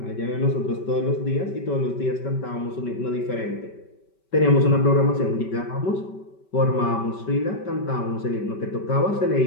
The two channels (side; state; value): right; late; 5.2 ms